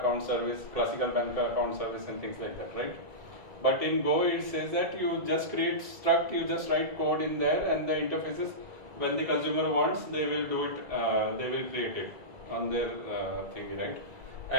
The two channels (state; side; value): late; left; 1.9 ms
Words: service, classical bank account service, and things like that, right? But in Go, it says that you just create struct, you just write code in there, and the interfaces, when the consumer wants, they will do it, they will create it on their thingy, right?